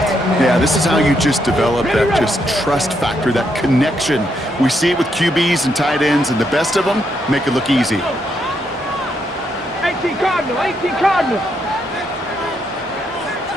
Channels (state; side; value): normal; both; correlation 0.78